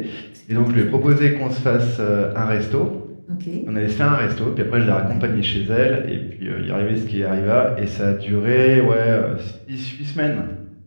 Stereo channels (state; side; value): inverted; both; correlation -1.00